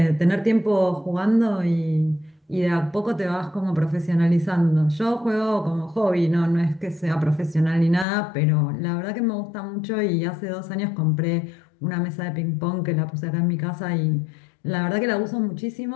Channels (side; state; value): right; drops out; at 8.1 s